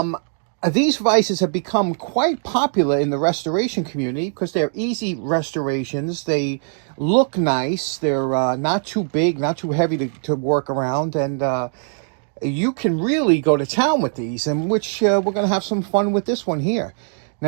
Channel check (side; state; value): left; silent; digital silence